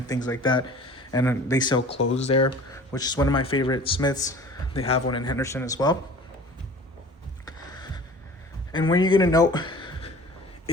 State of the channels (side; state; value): both; normal; correlation 0.43